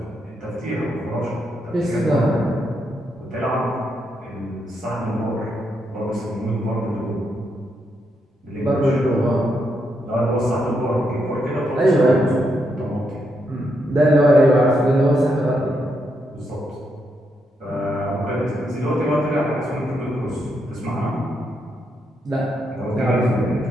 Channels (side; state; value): both; normal; correlation 0.80